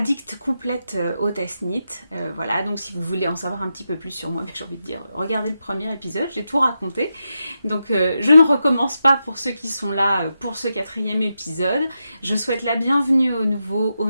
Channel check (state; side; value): inverted; both; correlation -0.87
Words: complète au test knit. Voilà, donc si vous voulez en savoir un petit peu plus sur moi, j'ai envie de dire, regardez le premier épisode, j'ai tout raconté. Donc je ne recommence pas pour ceux qui sont là pour ce 4e épisode. Je souhaite la bienvenue aux nouveaux,